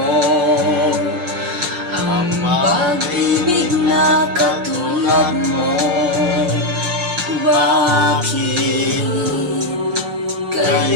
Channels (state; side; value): late; left; 5.6 ms